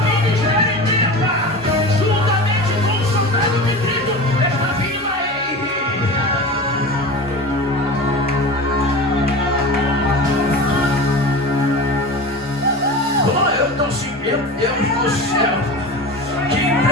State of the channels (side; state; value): both; normal; correlation 0.31